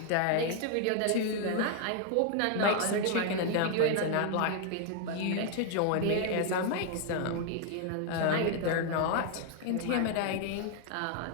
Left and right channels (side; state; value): both; different; correlation 0.00